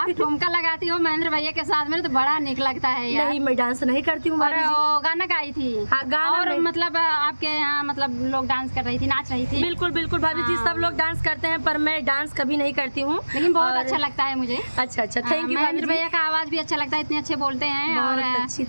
ठुमका लगाती हो महेंद्र भैया के साथ में तो बड़ा निक लगता है यार। नहीं, मैं डांस नहीं करती हूँ भाभी जी। वो गाना गाई थी। हाँ, गाना और मतलब आपके यहाँ मतलब लोग डांस कर रही थी, नाच रही थी। बिल्कुल बिल्कुल भाभी जी, सब लोग डांस करते हैं पर मैं डांस कभी नहीं करती हूँ, लेकिन बहुत अच्छा लगता है मुझे। अच्छा अच्छा, थैंक यू। महेंद्र भैया का आवाज भी अच्छा लगता है, इतने अच्छे बोलते हैं और अच्छी,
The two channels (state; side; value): inverted; both; correlation -1.00